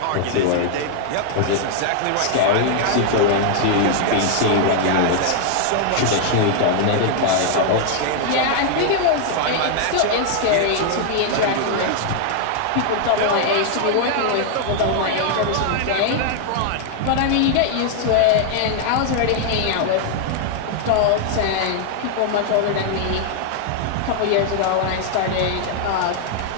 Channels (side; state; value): both; different; correlation 0.00